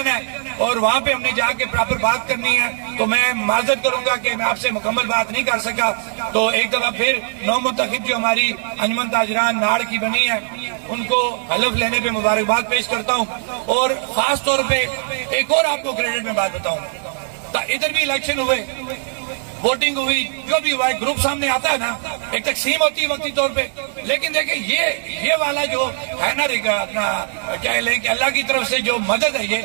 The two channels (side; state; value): left; silent; 64 dB below the other